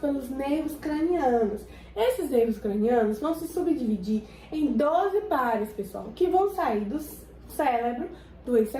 nervos cranianos. Esses nervos cranianos vão se subdividir em 12 pares, pessoal, que vão sair do cérebro, do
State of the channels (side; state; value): both; identical; correlation 1.00